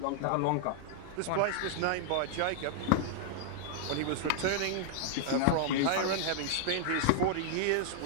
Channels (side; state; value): both; different; correlation -0.01